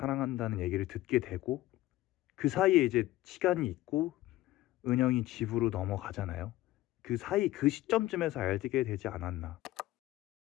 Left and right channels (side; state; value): right; quieter; 16.1 dB